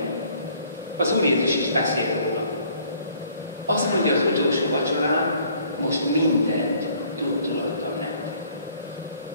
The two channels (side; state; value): both; inverted; correlation -0.59